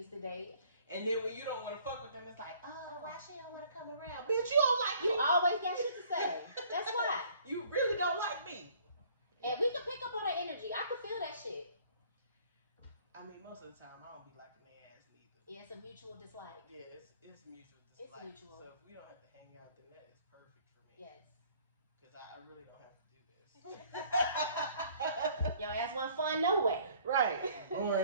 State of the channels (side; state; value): both; inverted; correlation -0.57